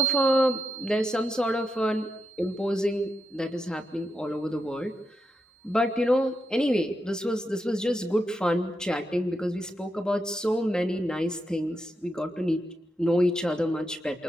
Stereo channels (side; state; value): both; normal; correlation 0.85